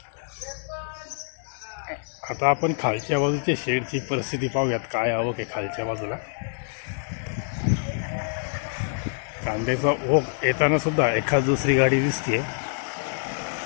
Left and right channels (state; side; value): silent; right; digital silence